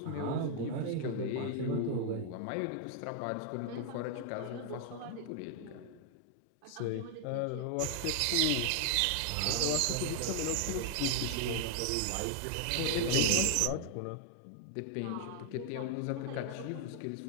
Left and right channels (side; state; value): both; different; correlation 0.00